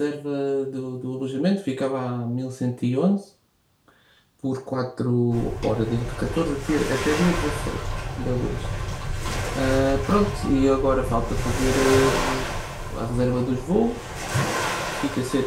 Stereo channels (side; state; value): both; identical; correlation 1.00